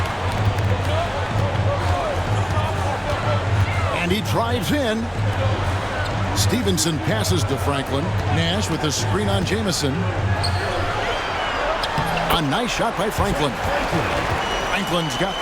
And he drives in. Stevenson passes to Franklin. Nash with a screen on Jamison. A nice shot by Franklin. Franklin's got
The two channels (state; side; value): identical; both; correlation 1.00